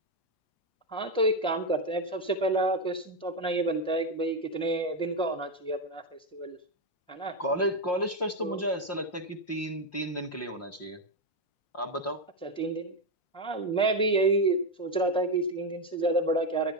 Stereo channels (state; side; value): late; right; 5.6 ms